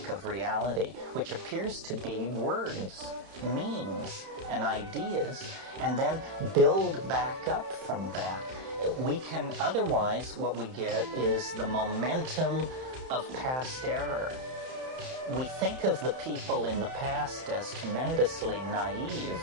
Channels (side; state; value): left; late; 31 ms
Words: of reality, which appears to be words, memes, and ideas, and then build back up from that. We can, otherwise, what we get is the momentum of past error. We think of the people in the past as tremendously